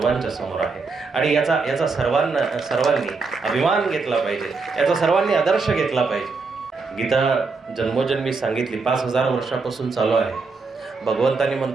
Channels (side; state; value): left; quieter; 4.3 dB